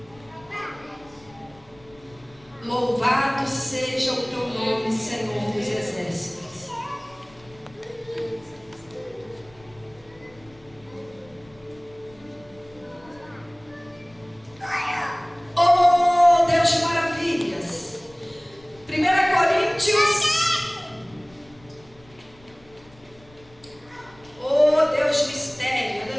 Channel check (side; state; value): left; noise; rumble, 27 dB below the sound